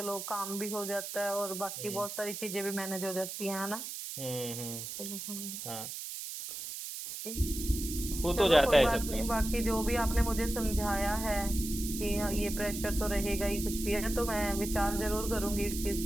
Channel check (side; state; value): right; noise; hiss, 7 dB below the sound